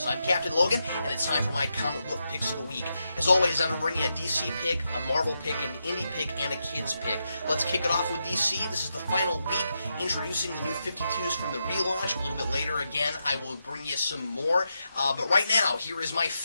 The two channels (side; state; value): both; inverted; correlation -0.85